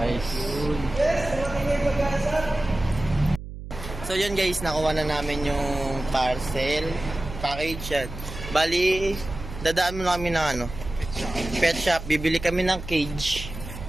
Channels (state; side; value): noise; right; hum, 11 dB below the sound